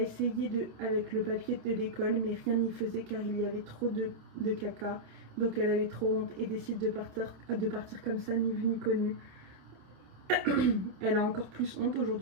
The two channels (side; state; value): left; late; 27 ms